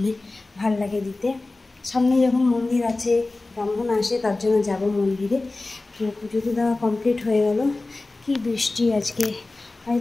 ভাল লাগে দিতে। সামনে যখন মন্দির আছে, ব্রাহ্মণ আসে, তার জন্য যাব মন্দিরে। তো পুজো তো দেওয়া কমপ্লিট হয়ে গেল। কি বৃষ্টি আজকে!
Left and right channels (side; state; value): right; quieter; 3.2 dB